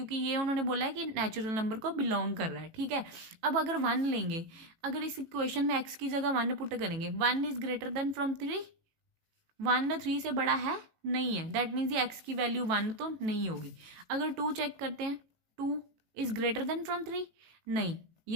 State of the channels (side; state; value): left; late; 18 ms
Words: ये उन्होंने बोला है कि नेचुरल नंबर को बिलोंग कर रहा है. ठीक है. अब अगर 1 लेंगे, अगर इस इक्वेशन में x की जगह 1 पुट करेंगे, 1 इज ग्रेटर देन फ्रॉम 3, 1 3 से बड़ा है, नहीं है, दैट मीन्स ये x की वैल्यू 1 तो नहीं होगी. अगर 2 चेक करते हैं, 2 इज ग्रेटर देन फ्रॉम 3, नहीं,